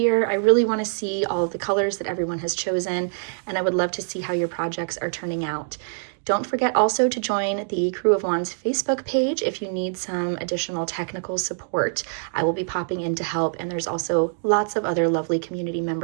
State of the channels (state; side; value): silent; left; digital silence